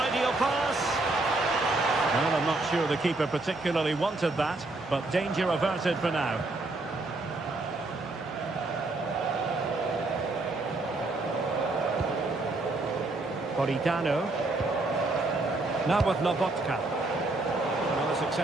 pass. Well, I'm not sure the keeper particularly wanted that, but danger averted for now. Politano. Now with Lobotka. Another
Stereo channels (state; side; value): quieter; left; 3.0 dB